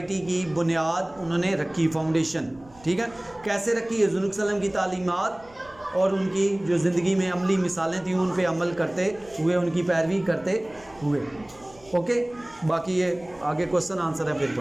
کی بنیاد انہوں نے رکھی، فاؤنڈیشن. ٹھیک ہے، کیسے رکھی؟ حضور صلی اللہ علیہ وسلم کی تعلیمات اور ان کی جو زندگی میں عملی مثالیں تھیں ان پہ عمل کرتے ہوئے، ان کی پیروی کرتے ہوئے. اوکے، باقی یہ آگے کوسچن آنسر ہے پھر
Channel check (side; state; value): right; noise; rumble, 25 dB below the sound